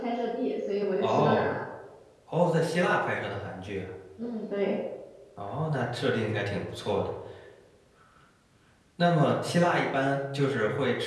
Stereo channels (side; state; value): both; identical; correlation 1.00